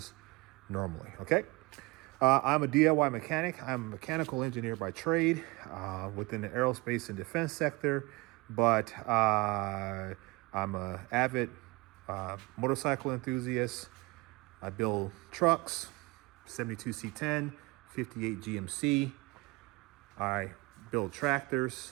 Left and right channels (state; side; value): quieter; left; 24.6 dB